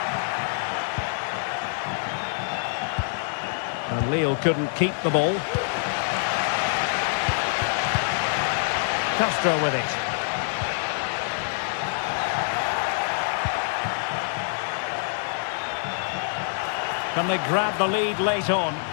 And Lille couldn't keep the ball. Castro with it. Can they grab the lead late on?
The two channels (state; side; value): silent; right; 57 dB below the other